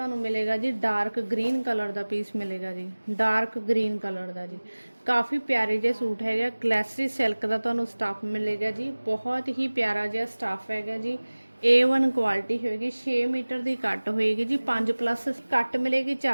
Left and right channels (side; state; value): both; inverted; correlation -1.00